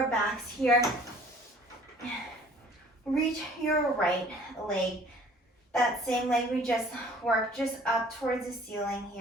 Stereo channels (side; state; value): both; normal; correlation 0.52